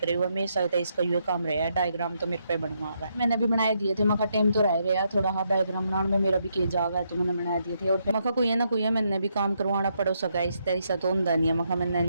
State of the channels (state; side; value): inverted; both; correlation -0.78